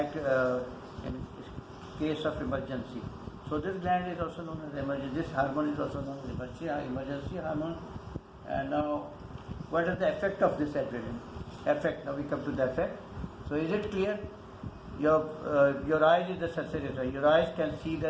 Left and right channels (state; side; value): identical; both; correlation 1.00